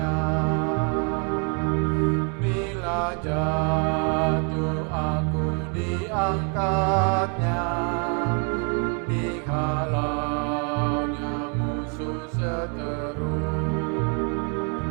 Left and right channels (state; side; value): quieter; left; 36.7 dB